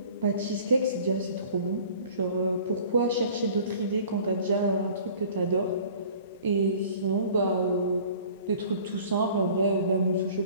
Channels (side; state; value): both; inverted; correlation -0.48